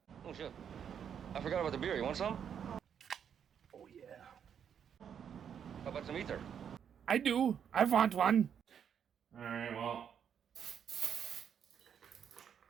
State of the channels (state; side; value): quieter; left; 8.1 dB